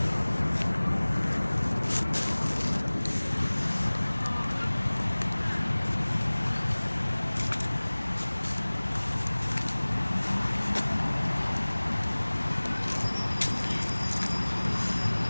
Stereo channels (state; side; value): inverted; both; correlation -1.00